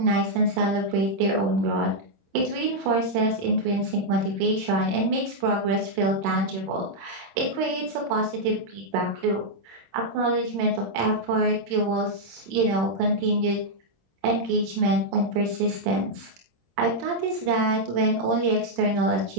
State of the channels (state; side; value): late; left; 26 ms